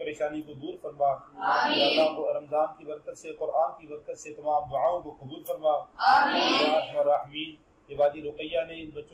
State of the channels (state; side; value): identical; both; correlation 1.00